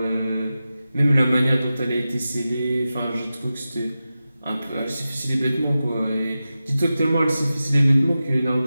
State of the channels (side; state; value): both; inverted; correlation -0.93